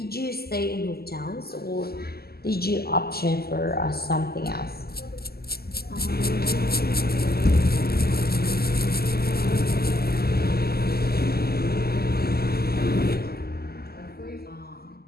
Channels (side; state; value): right; late; 0.45 ms